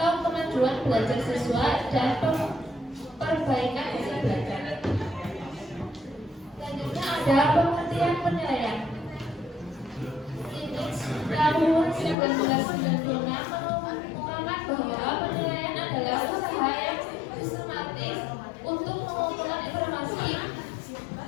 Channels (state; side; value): drops out; right; at 12.2 s